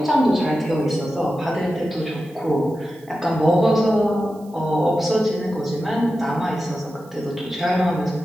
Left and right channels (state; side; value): noise; right; hiss, 29 dB below the sound